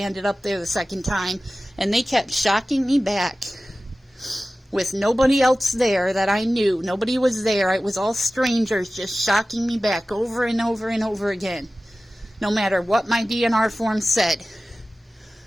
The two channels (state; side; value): normal; both; correlation 0.96